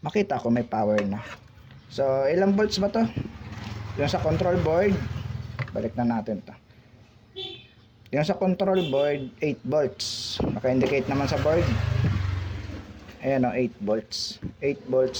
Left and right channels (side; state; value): both; identical; correlation 1.00